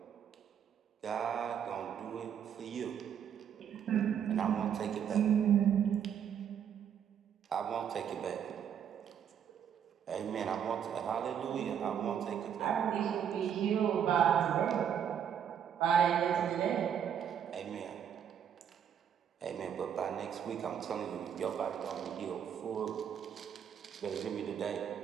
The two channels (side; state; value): left; quieter; 8.6 dB